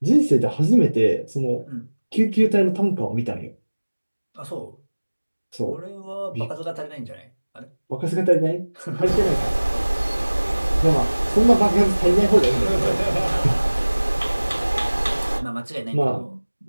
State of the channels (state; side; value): inverted; both; correlation -1.00